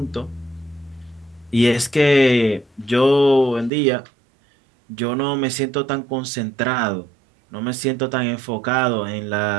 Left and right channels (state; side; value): drops out; left; at 3.7 s